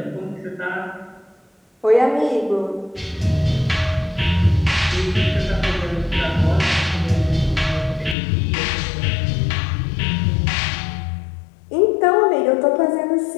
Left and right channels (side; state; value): right; drops out; at 8.2 s